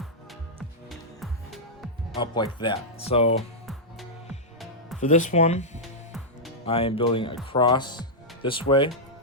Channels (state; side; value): normal; both; correlation -0.09